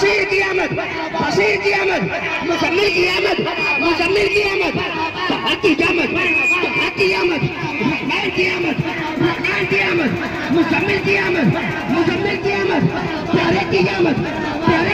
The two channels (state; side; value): identical; both; correlation 1.00